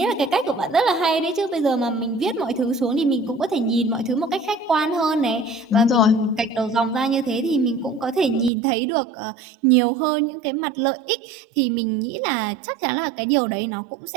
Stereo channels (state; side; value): drops out; left; at 8.5 s